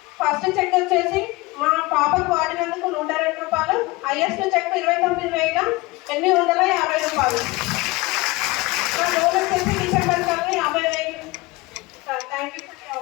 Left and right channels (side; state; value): right; quieter; 22.3 dB